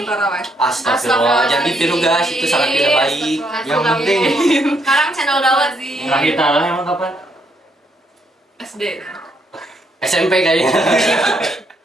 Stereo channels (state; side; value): normal; both; correlation 0.74